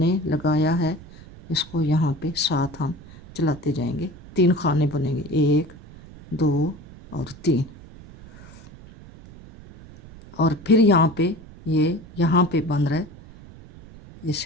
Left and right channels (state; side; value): noise; right; rumble, 19 dB below the sound